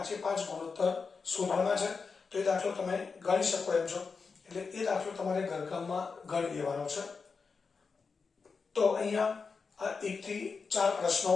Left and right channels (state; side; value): quieter; right; 5.0 dB